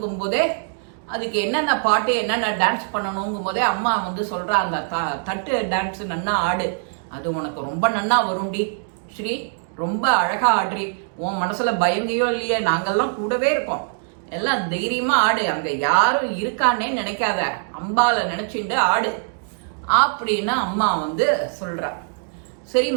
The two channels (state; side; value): silent; left; digital silence